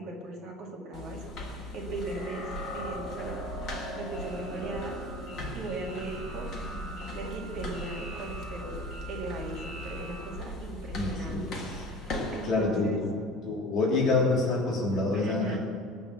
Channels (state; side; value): normal; both; correlation 0.39